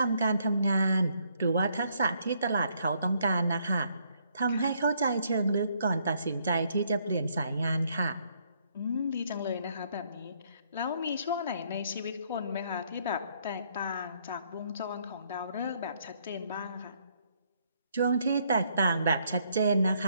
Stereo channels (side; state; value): both; inverted; correlation -0.70